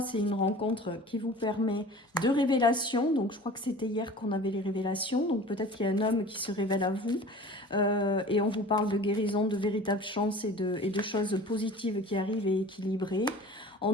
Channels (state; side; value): normal; both; correlation 0.41